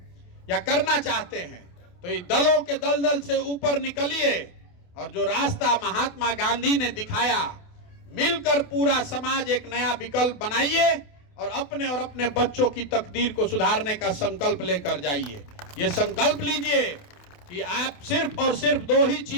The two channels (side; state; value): right; late; 28 ms